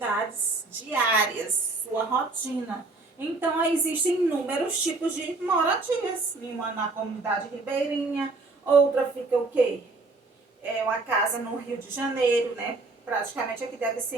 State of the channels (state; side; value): quieter; left; 3.4 dB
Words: diárias, sua rotina. Então, aí existem inúmeros tipos de moradias. Uma na comunidade ribeirinha, outra fica o quê? É uma casa no Rio de Janeiro, né? Praticamente aqui deve